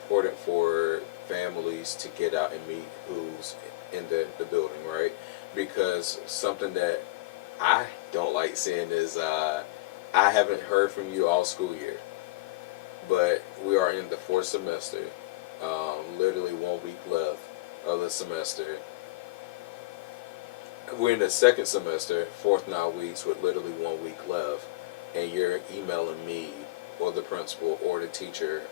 for families to get out and meet who's in the building, right? Because something that I don't like seeing is I haven't heard from you all school year, but we are in the 4th semester. Literally 1 week left of the semester. We're in the 2nd semester, 4th 9 weeks with literally 1 week left, and you're emailing me or the principal or the teacher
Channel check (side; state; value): right; quieter; 20.7 dB